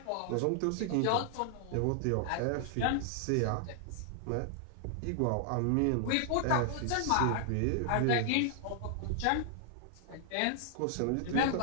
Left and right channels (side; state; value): both; different; correlation 0.00